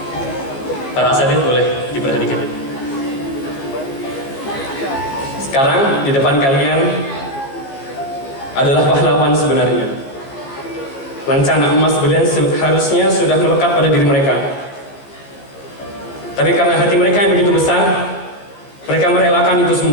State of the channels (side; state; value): right; late; 15 ms